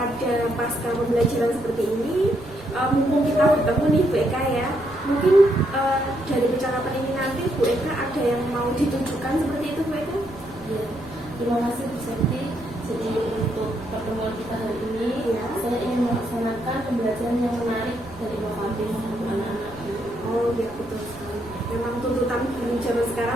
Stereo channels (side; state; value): right; noise; rumble, 20 dB below the sound